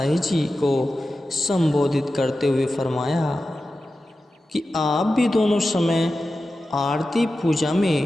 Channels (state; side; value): normal; both; correlation 0.93